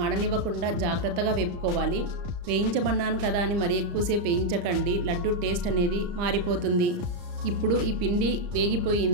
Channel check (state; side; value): late; left; 34 ms